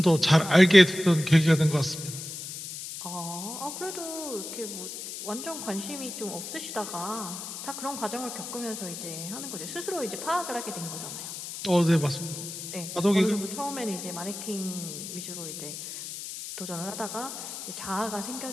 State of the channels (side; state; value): left; noise; hiss, 8 dB below the sound